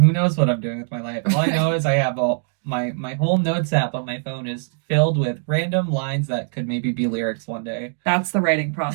knows what I'm doing with my life. All I know is I have my whole notes app on my phone is filled with random lines that could maybe be lyrics one day. That's the writing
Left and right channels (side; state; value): left; silent; digital silence